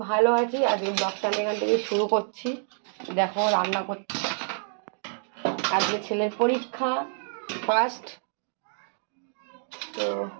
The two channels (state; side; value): silent; left; 60 dB below the other